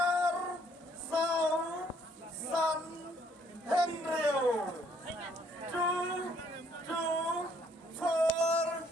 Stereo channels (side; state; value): both; normal; correlation 0.65